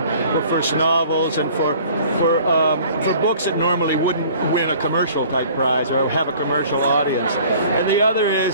for first novels and for books that normally wouldn't win a commercial type prize or have a commercial audience. And the other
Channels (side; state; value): both; inverted; correlation -0.50